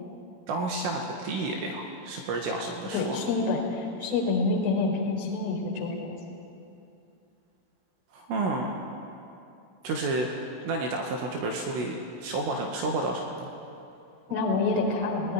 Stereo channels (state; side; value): late; left; 16 ms